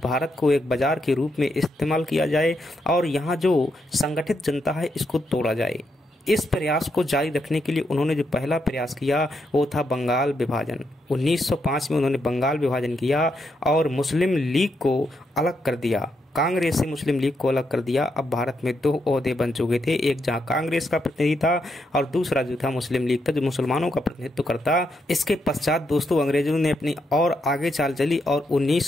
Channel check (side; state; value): both; normal; correlation 0.80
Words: को एक बाजार के रूप में इस्तेमाल किया जाए और यहाँ जो संगठित जनता है इसको तोड़ा जाए। इस प्रयास को जारी रखने के लिए उन्होंने जो पहला प्रयास किया वो था बंगाल विभाजन। 1905 में उन्होंने बंगाल विभाजन किया और मुस्लिम लीग को अलग कर दिया। कांग्रेस से मुस्लिम लीग को अलग कर दिया। अब भारत में दो ओहदे बन चुके थे, एक जहां कांग्रेस का प्रतिनिधि था और दूसरा जो था मुस्लिम लीग था जो मुसलमानों का प्रतिनिधित्व करता। इसके पश्चात दोस्तों अंग्रेजों ने अपनी और आगे चाल चली और